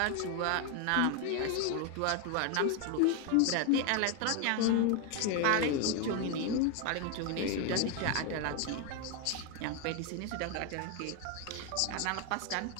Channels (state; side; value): different; both; correlation 0.01